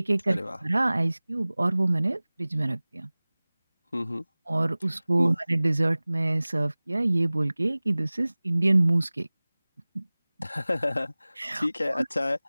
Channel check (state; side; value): inverted; both; correlation -0.99